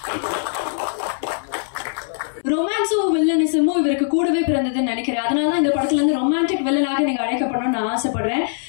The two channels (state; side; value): silent; right; 65 dB below the other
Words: ரொமான்ஸும் வில்லனிசமும் இவருக்கு கூடவே பிறந்ததுன்னு நினைக்கிறேன். அதனாலதான் இந்த படத்துல இருந்து ரொமான்டிக் வில்லனாக நீங்க அழைக்கப்படணும்னு நான் ஆசைப்படுறேன்.